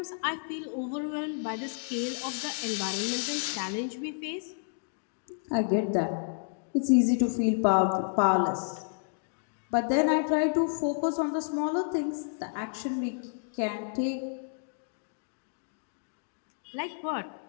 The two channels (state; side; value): silent; right; digital silence